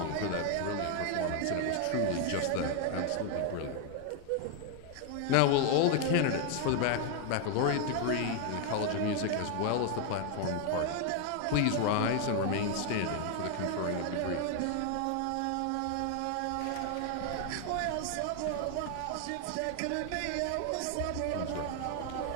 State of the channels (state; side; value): different; both; correlation 0.00